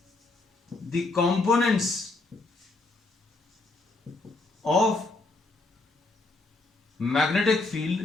the components of magnetic field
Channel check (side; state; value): right; quieter; 3.3 dB